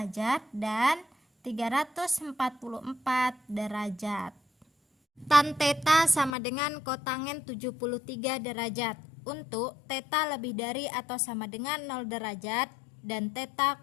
dan 344 derajat. Tan theta sama dengan kotangen 73 derajat. Untuk theta lebih dari atau sama dengan 0 derajat dan theta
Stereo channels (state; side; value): drops out; right; at 6.3 s